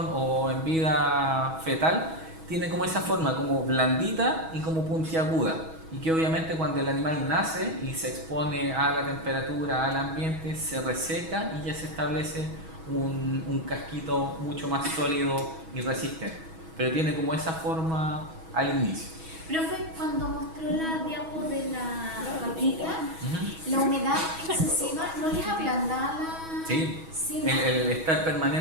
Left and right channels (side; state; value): left; late; 6.2 ms